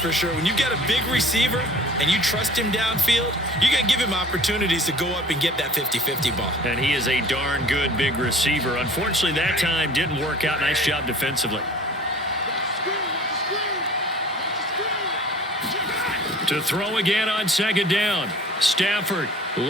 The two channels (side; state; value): both; normal; correlation 0.47